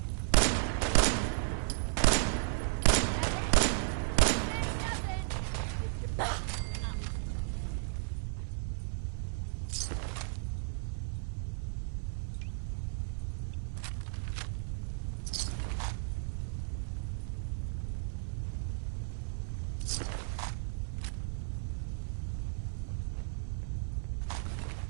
That went better than expected.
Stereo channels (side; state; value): left; silent; 55 dB below the other